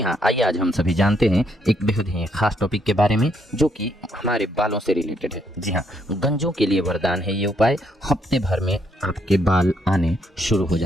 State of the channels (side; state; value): both; normal; correlation 0.73